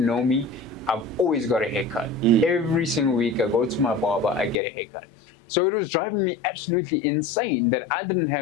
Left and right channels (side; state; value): right; drops out; at 4.5 s